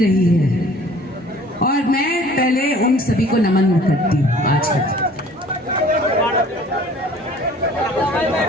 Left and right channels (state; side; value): normal; both; correlation 0.51